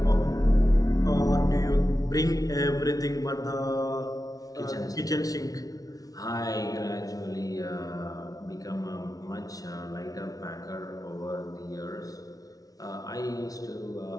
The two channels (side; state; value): right; late; 0.18 ms